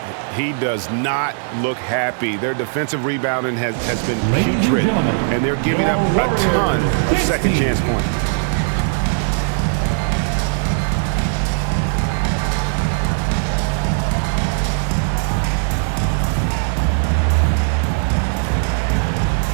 He does not look happy. Their defensive rebounding has been putrid, and they're giving up a ton of second chance points.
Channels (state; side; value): silent; left; digital silence